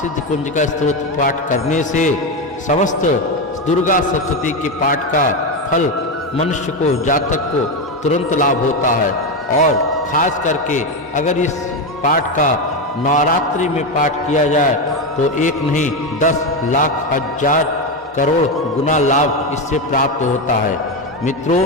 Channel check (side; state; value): both; normal; correlation 0.12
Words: कुंज का स्त्रोत पाठ करने से समस्त दुर्गा सप्तशती के पाठ का फल मनुष्य को, जातक को तुरंत लाभ होता है। और खास करके अगर इस पाठ का नवरात्रि में पाठ किया जाए तो एक नहीं 10 लाख हजार करोड़ गुना लाभ इससे प्राप्त होता है। मित्रों,